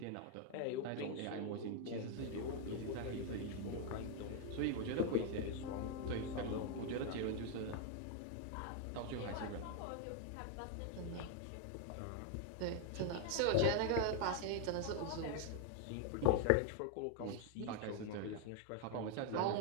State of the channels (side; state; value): both; different; correlation 0.01